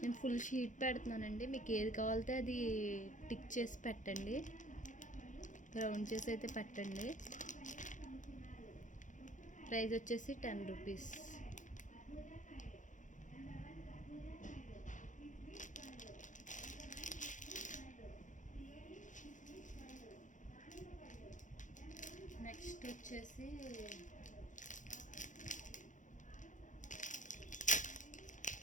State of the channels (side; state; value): right; late; 0.37 ms